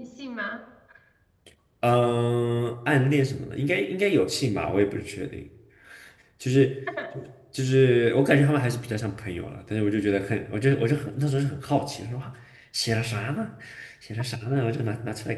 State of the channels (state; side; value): identical; both; correlation 1.00